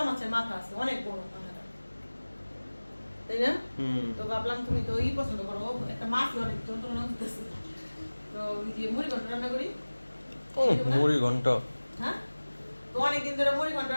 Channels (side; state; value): both; inverted; correlation -1.00